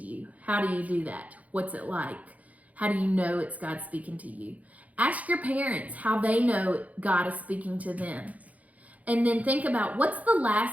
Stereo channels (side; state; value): left; late; 0.072 ms